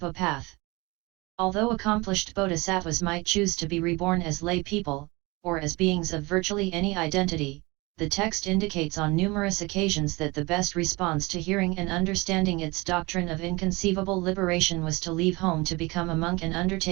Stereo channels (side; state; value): left; quieter; 24.3 dB